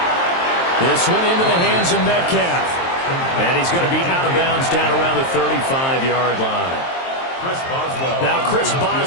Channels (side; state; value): right; late; 23 ms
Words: This one into the hands of Metcalf. And he's going to be out of bounds down around the 35-yard line. Now Chris